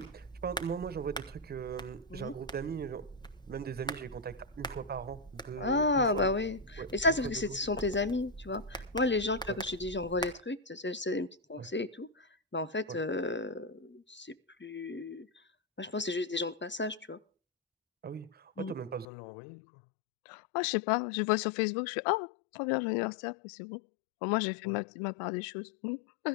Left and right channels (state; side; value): drops out; right; at 19.1 s